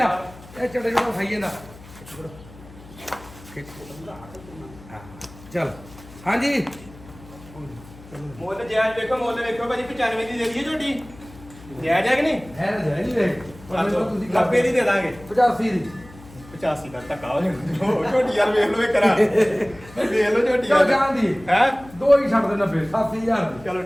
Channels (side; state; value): left; noise; hum, 20 dB below the sound